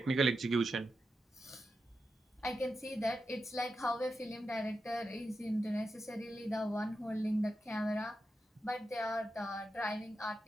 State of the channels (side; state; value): both; normal; correlation 0.88